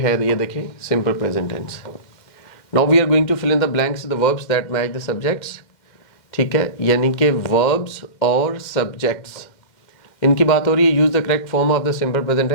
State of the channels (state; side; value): late; right; 2.1 ms